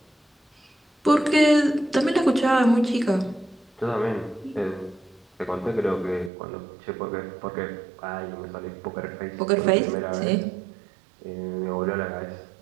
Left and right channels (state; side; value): drops out; left; at 6.3 s